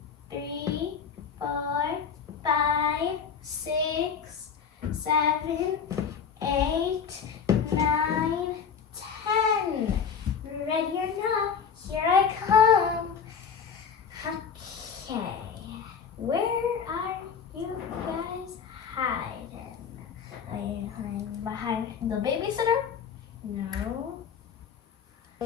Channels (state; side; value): quieter; right; 6.7 dB